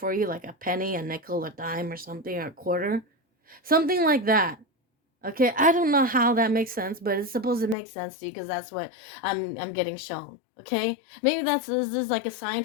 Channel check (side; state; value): right; drops out; at 7.8 s